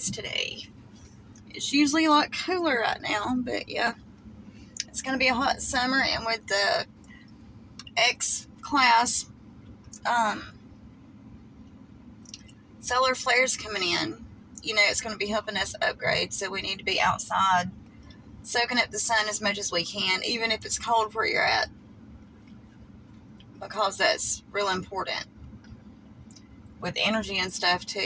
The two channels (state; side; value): identical; both; correlation 1.00